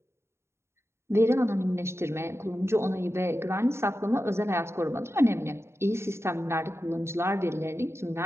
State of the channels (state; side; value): late; left; 0.13 ms